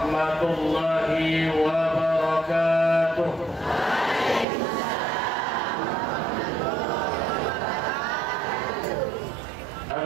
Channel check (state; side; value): drops out; left; at 4.5 s